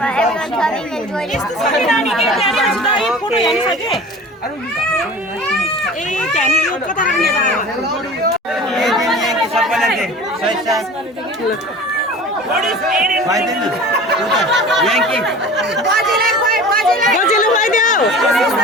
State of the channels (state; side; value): normal; both; correlation 0.39